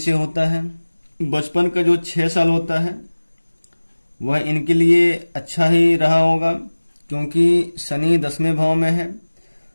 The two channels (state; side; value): inverted; both; correlation -1.00